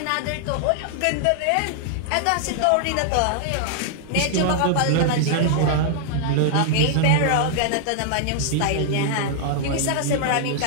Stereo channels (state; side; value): different; both; correlation -0.01